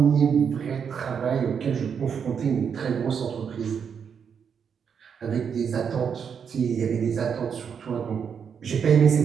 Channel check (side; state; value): left; quieter; 7.1 dB